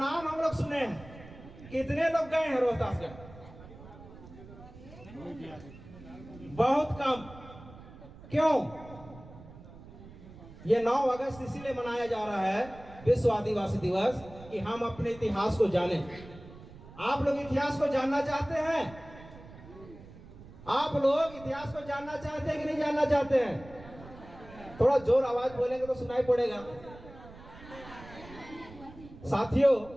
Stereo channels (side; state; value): right; noise; rumble, 18 dB below the sound